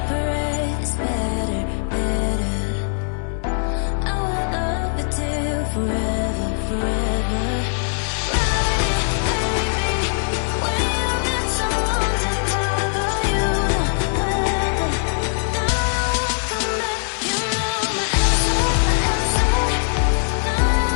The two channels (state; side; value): silent; right; digital silence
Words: is better, better. I will love you till forever, forever.